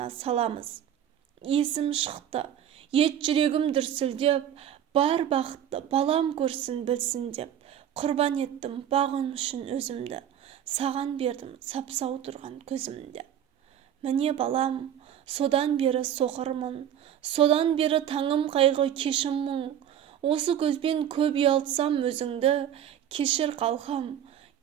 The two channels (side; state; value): left; quieter; 10.0 dB